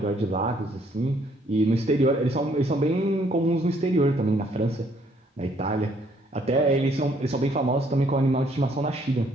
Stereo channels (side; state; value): both; normal; correlation 0.66